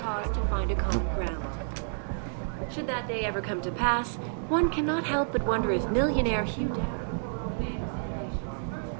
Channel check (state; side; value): silent; left; digital silence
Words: cause to find a common ground. Should that day ever come to pass, one cannot help but wonder if millionaire Hugh Darrow, the man whose innovations first